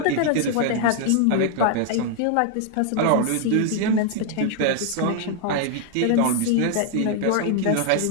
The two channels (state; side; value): different; both; correlation 0.00